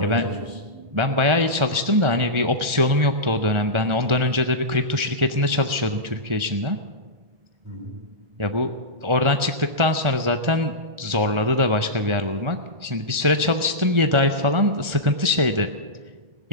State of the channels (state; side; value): late; left; 1.4 ms